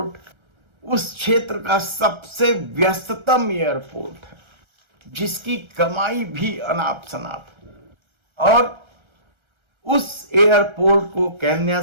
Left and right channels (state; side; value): late; left; 1.3 ms